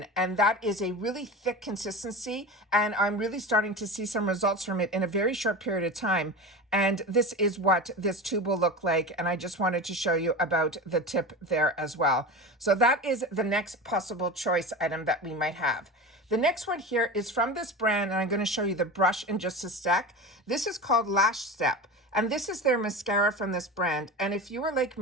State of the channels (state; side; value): normal; both; correlation 0.28